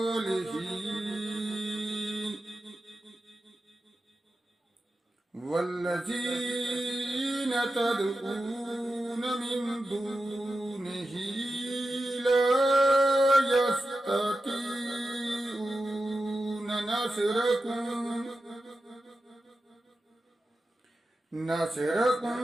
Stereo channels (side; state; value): both; normal; correlation 0.91